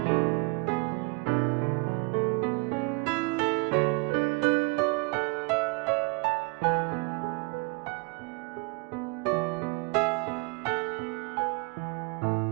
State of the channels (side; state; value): left; quieter; 29.9 dB